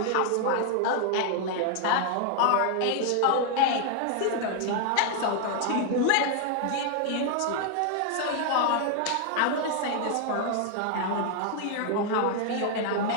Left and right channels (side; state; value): both; different; correlation 0.00